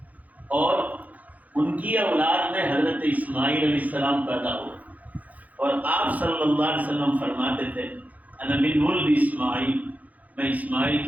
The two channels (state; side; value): late; left; 0.077 ms